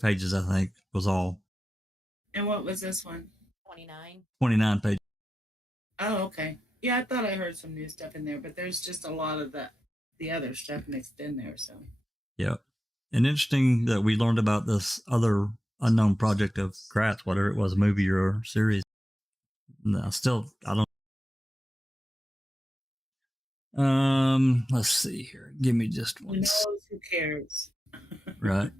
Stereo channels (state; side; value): normal; both; correlation 0.91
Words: pages, I think, was all. And what was this one? 29. 29 pages. Oh, okay. Yeah, I thought I heard some new stuff in there, but there's just a lot of the other stuff mixed in there. So. Yeah, and interesting that we learned about this other unknown project of Kratz, whatever it was, a movie or series. No, I don't. Let's see here. Give me just one. Who knows? Who cares? Right.